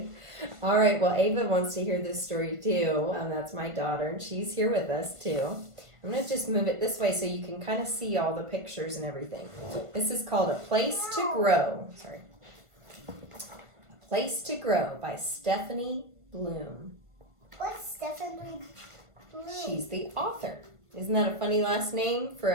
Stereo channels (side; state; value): left; late; 1.5 ms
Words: All right, well, Ava wants to hear this story too. That's my daughter, and she's here with us too. I'm going to just move it this way so you can kind of see all the pictures and everything. This is called A Place to Grow. Sorry. A Place to Grow by Stephanie Bloom. What's Stephanie Bloom? She's the author. Isn't that a funny last name for